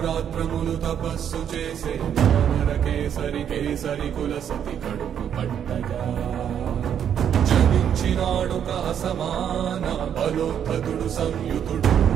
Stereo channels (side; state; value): left; quieter; 8.9 dB